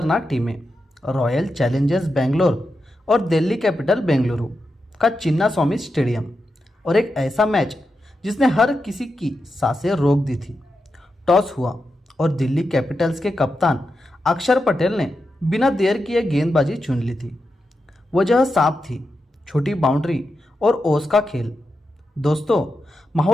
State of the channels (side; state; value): both; normal; correlation 0.88